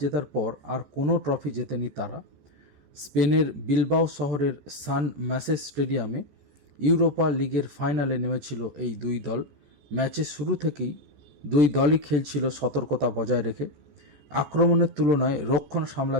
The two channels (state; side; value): late; left; 14 ms